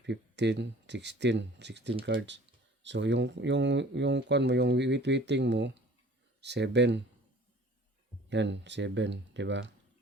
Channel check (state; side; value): normal; both; correlation 0.49